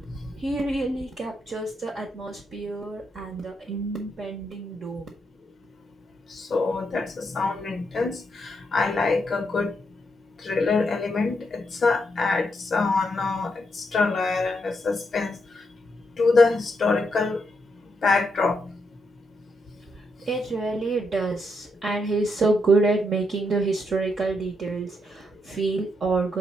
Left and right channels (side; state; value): both; normal; correlation 0.80